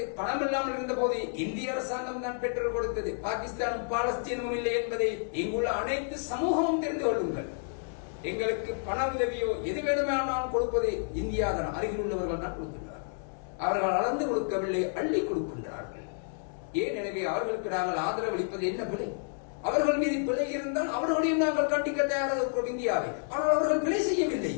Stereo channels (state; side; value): silent; right; digital silence